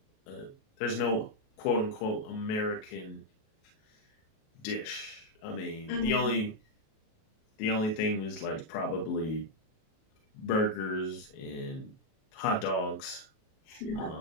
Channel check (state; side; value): late; right; 37 ms